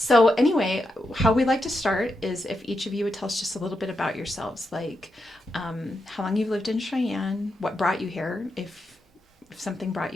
anyway, how we like to start is if each of you would tell us just a little bit about yourselves, like how long you've lived in Cheyenne, what brought you here, if something brought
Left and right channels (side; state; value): both; normal; correlation 0.85